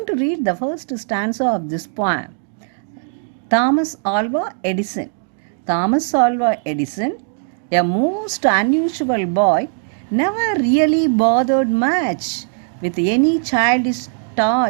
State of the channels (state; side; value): silent; left; 63 dB below the other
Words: to read the first stanza of this poem. Thomas Alva Edison. Thomas Alva Edison, a most unusual boy, never really bothered much with any childish